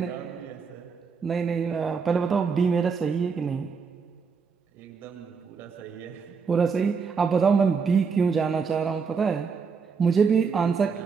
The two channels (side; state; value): left; quieter; 5.6 dB